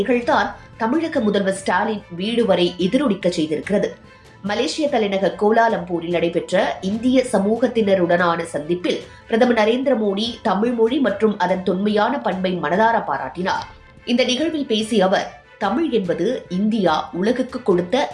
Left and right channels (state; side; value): identical; both; correlation 1.00